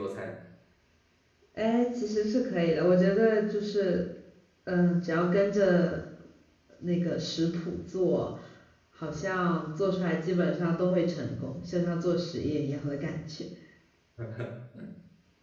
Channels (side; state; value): both; identical; correlation 1.00